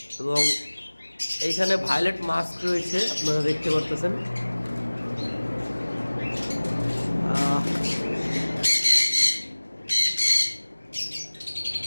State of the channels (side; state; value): both; inverted; correlation -1.00